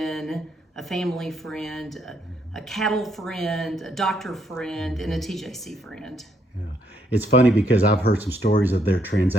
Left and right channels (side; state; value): both; normal; correlation 0.73